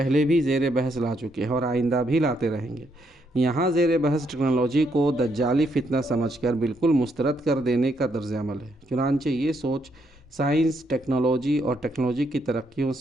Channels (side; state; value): both; normal; correlation 0.76